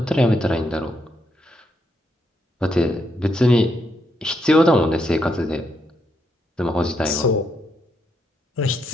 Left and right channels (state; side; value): normal; both; correlation 0.78